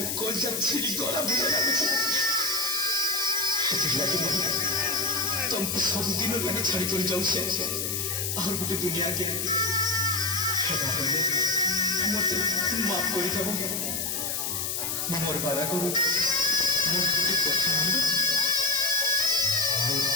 कोई जब छिड़ी गला बुझे लागছে लगे तुमको सब दिनों लगे छाड़ी कर जाऊँ से और गोटे दुनिया के मत माफ कर देव मोर बाधा करू मोर गोटे कथा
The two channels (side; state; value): left; noise; hiss, 1 dB below the sound